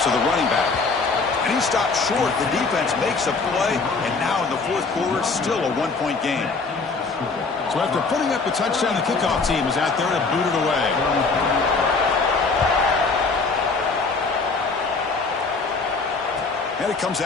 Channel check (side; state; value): right; quieter; 4.2 dB